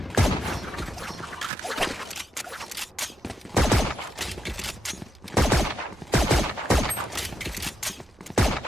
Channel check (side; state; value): both; normal; correlation 0.82